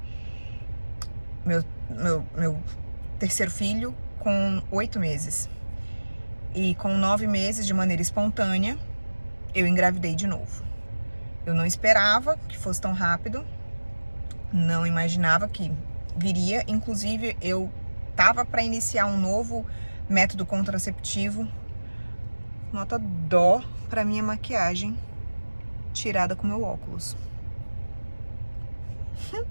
meu terceiro filho, com 8 meses. E com 9 meses, de maneira espontânea, eu engravidei de novo. Eu não esperava que fosse tão rápido, não imaginava que viria. Inclusive, eu tava para iniciar um novo método contraceptivo. Nota dó para minha maquiagem tirada com meu óculos.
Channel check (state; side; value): inverted; both; correlation -1.00